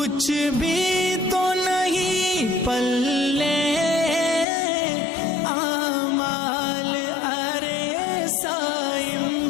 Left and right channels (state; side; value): drops out; right; at 4.5 s